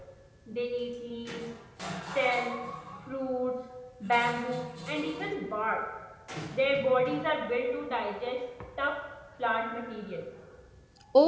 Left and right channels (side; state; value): both; identical; correlation 1.00